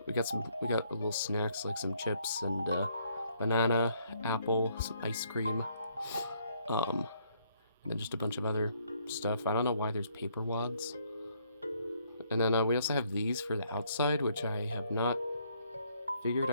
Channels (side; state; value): both; inverted; correlation -0.68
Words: We got little snacks like some chips and banana, apple, some ice cream. And then just a bunch of other stuff. I don't know why there's paper wads. And then we also have these for the outside, which I have not figured